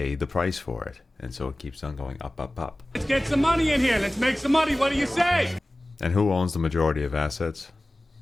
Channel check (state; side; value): normal; both; correlation 0.97